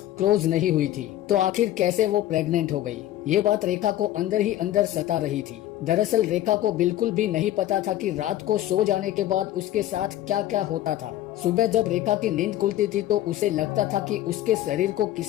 क्लोज नहीं हुई थी, तो आखिर कैसे वो प्रेग्नेंट हो गई? ये बात रेखा को अंदर ही अंदर सता रही थी। दरअसल रेखा को बिल्कुल भी नहीं पता था कि रात को सो जाने के बाद उसके साथ क्या क्या होता था। सुबह जब रेखा की नींद खुलती थी तो उसे लगता था कि उसके शरीर को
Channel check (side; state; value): right; quieter; 13.4 dB